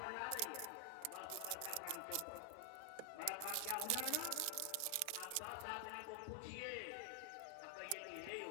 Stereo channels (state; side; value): different; both; correlation 0.00